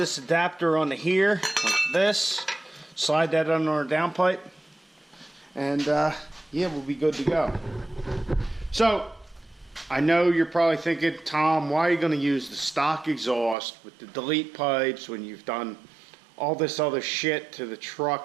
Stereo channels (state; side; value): drops out; left; at 13.6 s